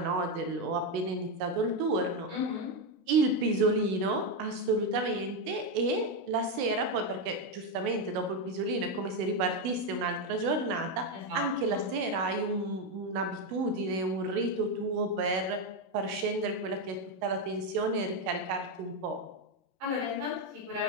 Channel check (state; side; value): late; left; 16 ms